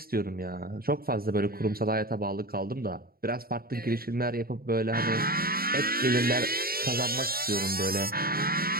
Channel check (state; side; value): late; left; 0.43 ms